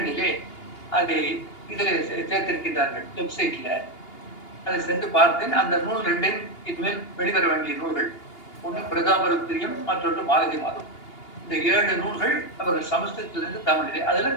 அதை இதில் சேர்த்திருக்கின்றார்கள் வெப்சைட்ல. அதை சென்று பார்த்தேன். அந்த நூல் 2 இனிமேல் வெளிவர வேண்டிய நூல்கள். ஒன்று பிரதாபருத்திரியம், மற்றொன்று மாலதி மாதம். இந்த 7 நூல்கள் அவர்கள் சமஸ்கிருதத்திலிருந்து தமிழிலே. அதுல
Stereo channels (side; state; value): right; late; 2.8 ms